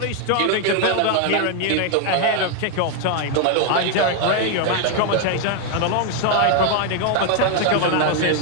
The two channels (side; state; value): both; different; correlation 0.01